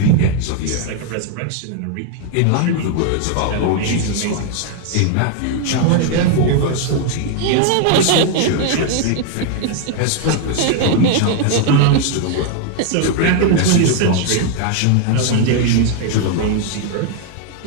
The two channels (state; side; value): different; both; correlation 0.00